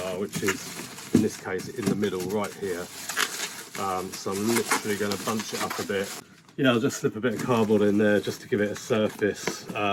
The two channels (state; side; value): identical; both; correlation 1.00